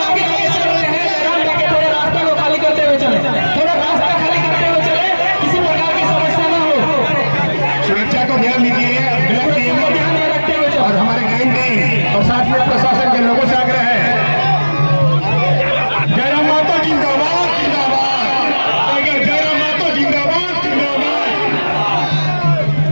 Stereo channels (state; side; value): inverted; both; correlation -1.00